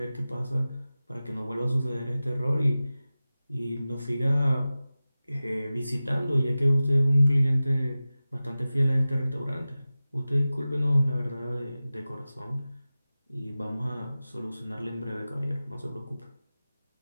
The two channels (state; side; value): inverted; both; correlation -0.96